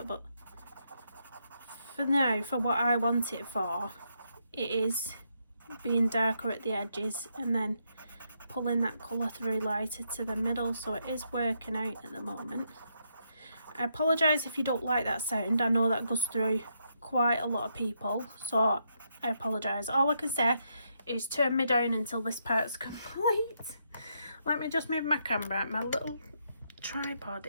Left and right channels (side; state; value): both; inverted; correlation -0.78